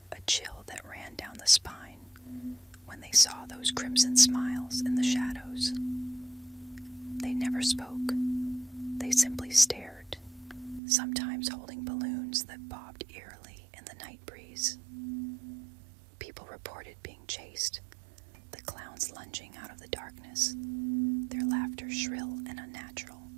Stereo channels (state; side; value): drops out; left; at 10.8 s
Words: a chill that ran down the spine when they saw those crimson smiles in the shadows. They never spoke. They simply stared, sometimes holding balloons that bobbed eerily in the night breeze. People reported being chased, the clowns lunging out of the darkness, their laughter shrill and unnatural,